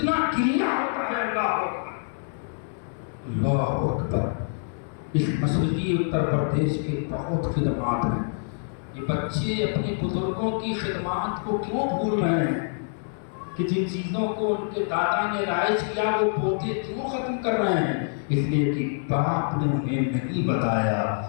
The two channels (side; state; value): right; silent; digital silence